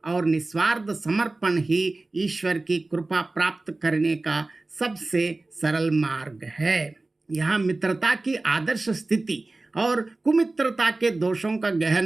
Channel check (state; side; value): quieter; left; 3.1 dB